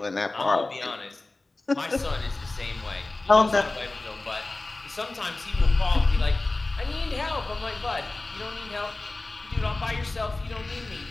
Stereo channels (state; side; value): quieter; right; 3.1 dB